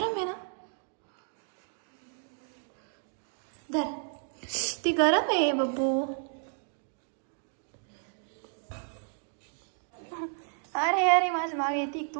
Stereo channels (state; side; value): silent; left; 56 dB below the other